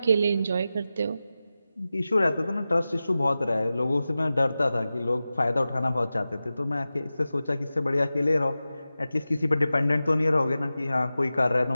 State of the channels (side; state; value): both; inverted; correlation -0.94